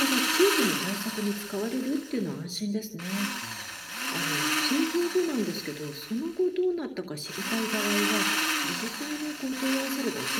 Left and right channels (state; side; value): identical; both; correlation 1.00